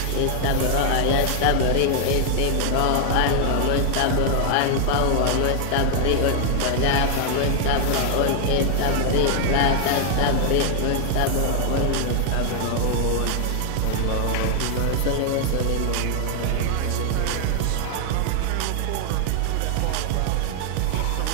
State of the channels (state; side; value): different; both; correlation 0.00